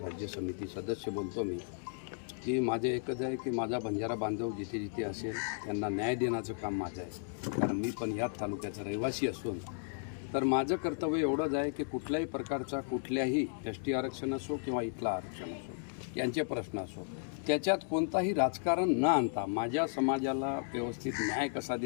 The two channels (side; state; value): right; silent; digital silence